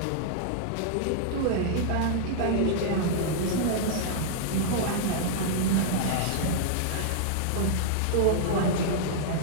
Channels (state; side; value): different; both; correlation -0.01